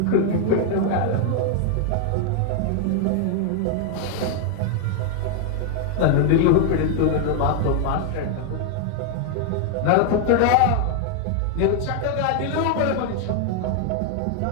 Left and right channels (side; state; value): both; different; correlation 0.00